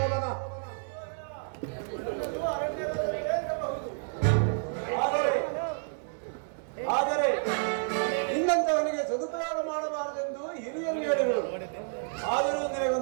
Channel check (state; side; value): silent; left; digital silence